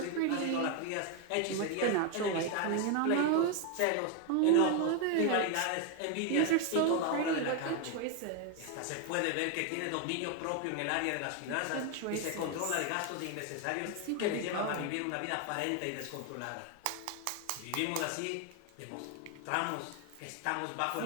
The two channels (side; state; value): both; different; correlation 0.01